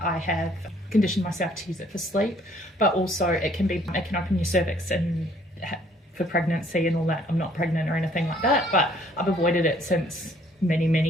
I have conditioned myself to use it for sleep, but also it can open your cervix and for pregnancy and all that. I'm not pregnant or anything like that, but I've avoided it since many, many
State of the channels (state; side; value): normal; both; correlation 0.61